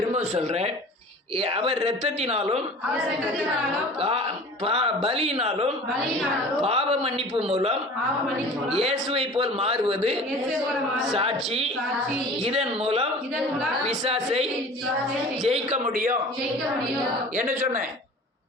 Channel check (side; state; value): both; normal; correlation 0.41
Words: சொல்றேன், அவர் இரத்தத்தினாலும் பலியினாலும் பாவ மன்னிப்பு மூலம் இயேசுவை போல் மாறுவது சாட்சி. இதன் மூலம் பிசாசை ஜெயிக்க முடியும். என்ன சொன்னேன்?